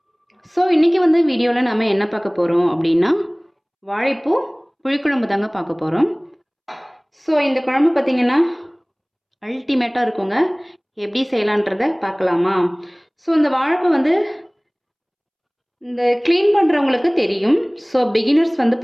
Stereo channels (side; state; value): both; identical; correlation 1.00